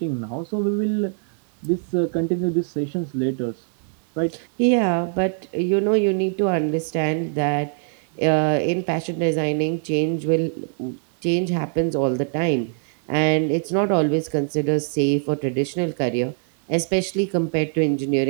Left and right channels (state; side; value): silent; left; 63 dB below the other